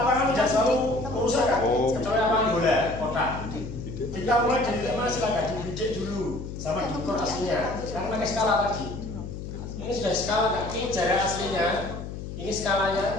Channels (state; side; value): noise; left; hum, 8 dB below the sound